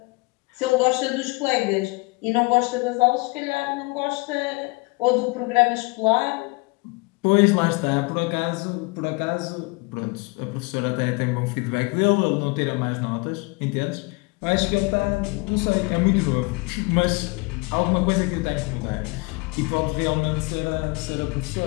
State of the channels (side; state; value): right; quieter; 27.5 dB